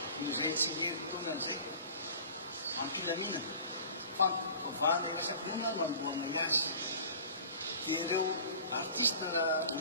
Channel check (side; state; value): both; inverted; correlation -0.43